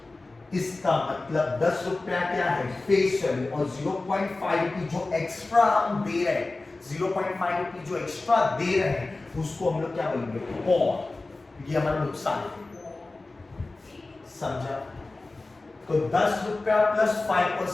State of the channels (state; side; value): quieter; right; 3.2 dB